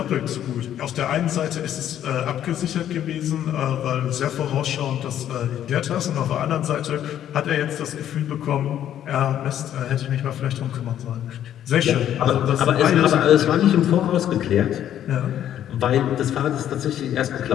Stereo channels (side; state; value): right; quieter; 10.9 dB